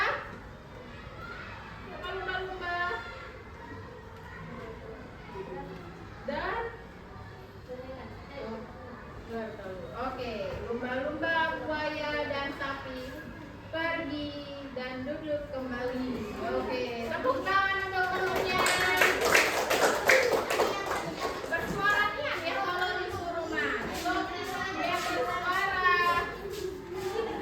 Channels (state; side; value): identical; both; correlation 1.00